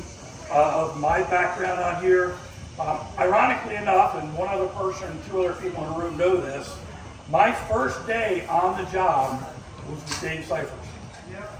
of my background on here. Ironically enough, and one other person and 2 other people in the room know this, My first day on the job was with Dave Cyphers. Dave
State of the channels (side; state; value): both; identical; correlation 1.00